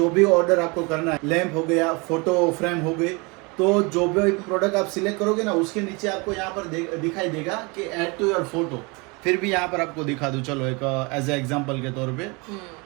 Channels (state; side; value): quieter; left; 28.5 dB